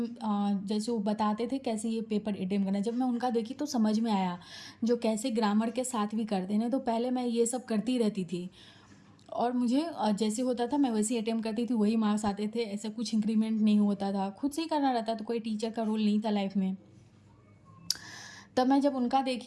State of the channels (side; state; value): both; identical; correlation 1.00